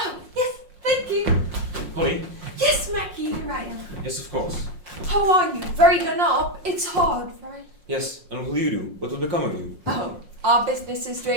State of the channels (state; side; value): late; left; 5.6 ms